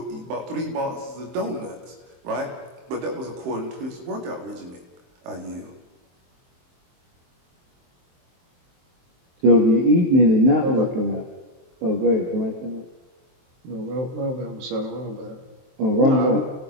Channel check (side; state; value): left; late; 23 ms